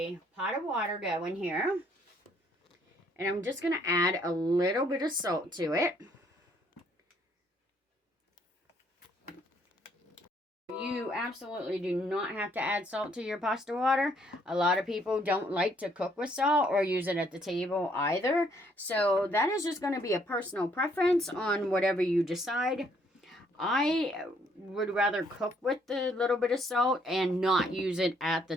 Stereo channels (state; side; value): normal; both; correlation 0.67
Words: pot of water going here. And I'm just going to add a little bit of salt to it. You absolutely do not have to add salt to your pasta water. A lot of people don't like to cook with salt or use it at the table either. So that is just going to be a personal preference on whatever you decide. I would rather cook with the little bit of salt and not use it at the